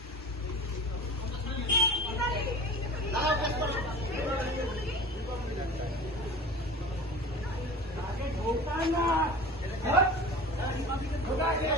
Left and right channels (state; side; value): normal; both; correlation 0.37